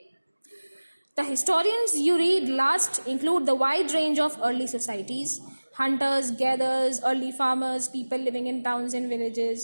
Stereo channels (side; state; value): both; inverted; correlation -1.00